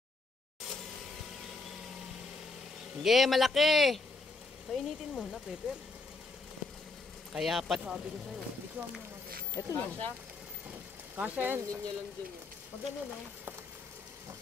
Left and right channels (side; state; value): right; quieter; 3.6 dB